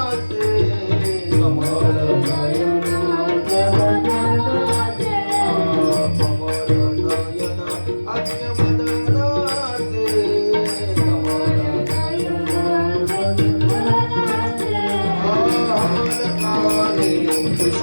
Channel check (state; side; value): inverted; both; correlation -1.00